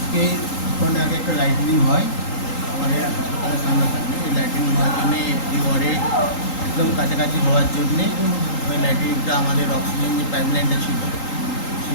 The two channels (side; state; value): right; late; 3.8 ms